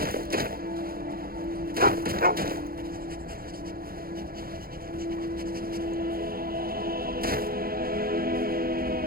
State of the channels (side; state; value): left; late; 0.43 ms